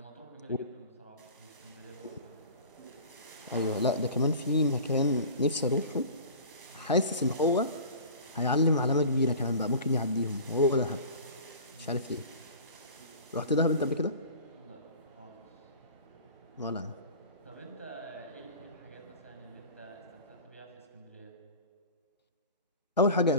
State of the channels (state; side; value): inverted; both; correlation -0.39